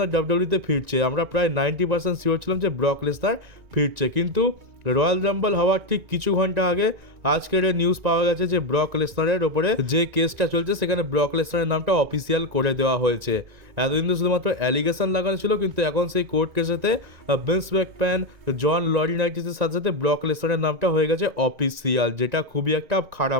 ডাব্লিউডব্লিউতে ফিরছে। আমরা প্রায় 90% শিওর ছিলাম যে ব্রক লেসনার ফিরছে, কিন্তু রয়্যাল রাম্বল হওয়ার ঠিক কিছু ঘন্টা আগে আজকের নিউজ পাওয়া গেছে যে ব্রক লেসনারের ওপরে যে কেসটা চলছে সেখানে ব্রক লেসনারের নামটা অফিসিয়াল করে দেওয়া হয়েছে। এতদিন তো শুধুমাত্র অ্যালিগেশন লাগানো ছিল, কিন্তু এখন সেই কোর্ট কেসেতে ভিন্স ম্যাকম্যান, জন লরিনাইটিসের সাথে সাথে ব্রক লেসনারের নামটা হয়ে গেছে অফিসিয়াল, যেটা খুবই একটা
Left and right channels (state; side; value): late; left; 1.9 ms